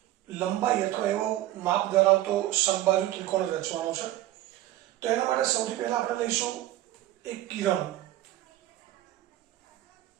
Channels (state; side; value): quieter; left; 14.7 dB